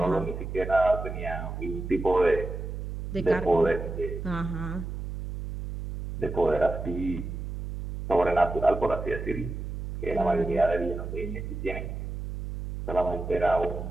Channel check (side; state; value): right; noise; hum, 6 dB below the sound